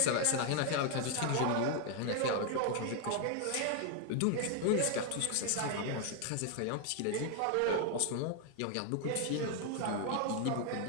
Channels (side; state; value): both; different; correlation 0.01